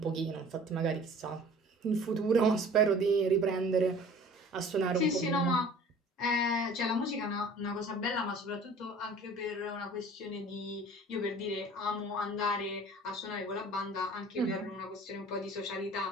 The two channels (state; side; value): normal; both; correlation 0.46